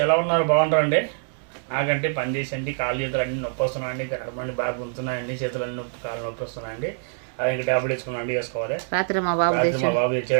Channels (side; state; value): left; silent; digital silence